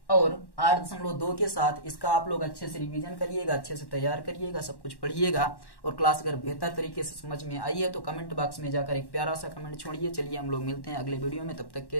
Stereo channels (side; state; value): right; late; 1.1 ms